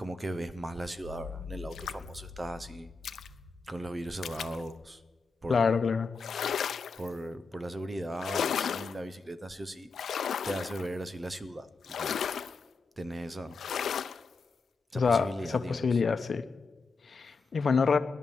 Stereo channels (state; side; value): quieter; right; 4.2 dB